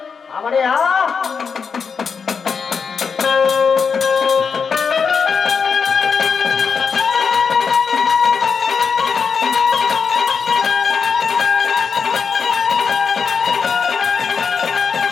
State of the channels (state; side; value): quieter; right; 5.8 dB